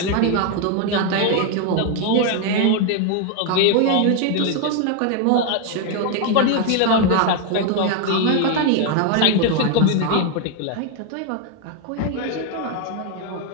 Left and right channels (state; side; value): different; both; correlation 0.01